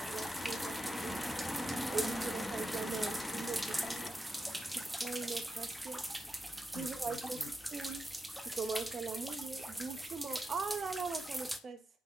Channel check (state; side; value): normal; both; correlation 0.88